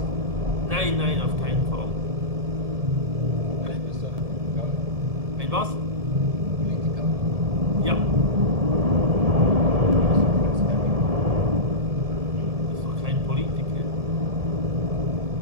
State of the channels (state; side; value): late; left; 1.7 ms